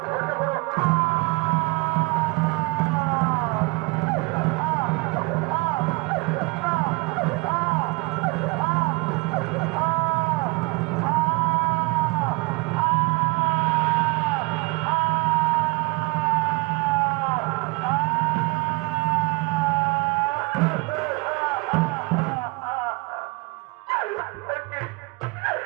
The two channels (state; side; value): quieter; left; 25.9 dB